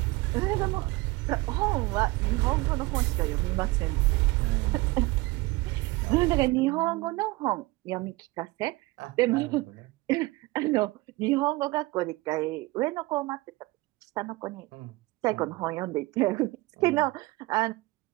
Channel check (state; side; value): quieter; left; 21.6 dB